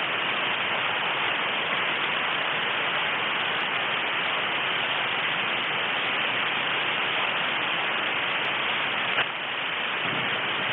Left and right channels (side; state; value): both; identical; correlation 1.00